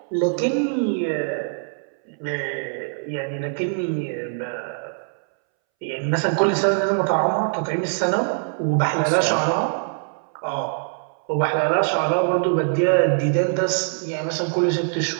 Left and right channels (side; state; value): left; silent; 63 dB below the other